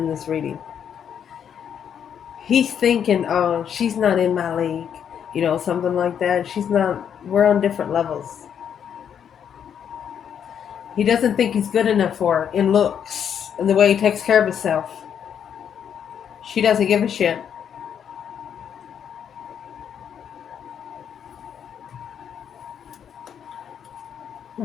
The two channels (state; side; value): quieter; right; 8.4 dB